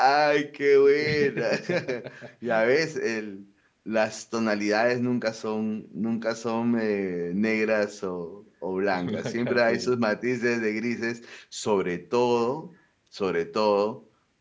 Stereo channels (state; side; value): identical; both; correlation 1.00